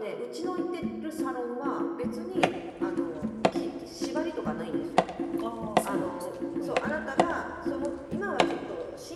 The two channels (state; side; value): identical; both; correlation 1.00